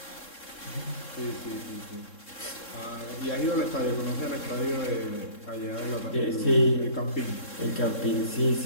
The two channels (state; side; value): late; right; 3.7 ms